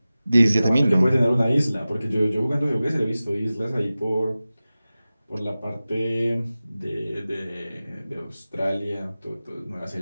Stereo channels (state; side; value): inverted; both; correlation -0.96